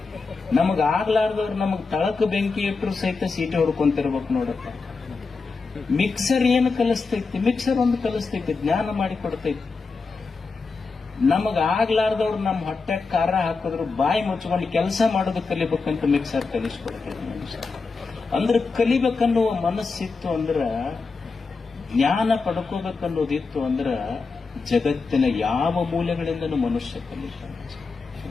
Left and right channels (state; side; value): quieter; right; 4.4 dB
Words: ನಮಗ್ ಆಗ್ಲಾರ್ದವ್ರು ನಮಗ್ ತಳಕ ಬೆಂಕಿ ಇಟ್ಟರು ಸಹಿತ ಸೀಟಿ ಹೊಡ್ಕೊಂತಿರ್ಬೇಕು ನೋಡಪ್ಪ. ಮಿಕ್ಸರ್ ಏನು ಕಲಿಸ್ತೈತಿ? ಮಿಕ್ಸರ್ ಒಂದು ಕಲಿಸ್ತೈತಿ, ಜ್ಞಾನ ಮಾಡಿ ಕೊಡ್ತೈತಿ. ನಮಗ್ ಆಗ್ಲಾರ್ದವ್ರು ನಮ್ಮ ಹೊಟ್ಟೆ ಖಾರ ಹಾಕಿದ್ರು ಬಾಯಿ ಮುಚ್ಕೊಂಡು ಕೆಲಸ ಮಾಡೋದು ಕಲಿಬೇಕಂತ ಮಿಕ್ಸರ್ ಕಲಿಸ್ಕೊಡ್ತೈತಿ ಮನುಷ್ಯ. ಅಂದ್ರೆ ಕಲಿಬೇಕನ್ನುವ ಮನಸ್ಸಿತ್ತು ಅಂದ್ರ, ಜ್ಞಾನ ಪಡ್ಕೋಬೇಕನ್ನೋದಿತ್ತು ಅಂದ್ರ ಜಗತ್ತಿನ ಯಾವ ಮೂಲೆಗಳಿಂದನೂ ಮನುಷ್ಯ ಕಲಿತಾನೆ.